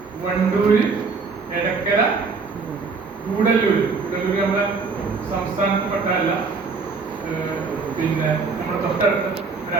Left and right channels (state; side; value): quieter; left; 4.6 dB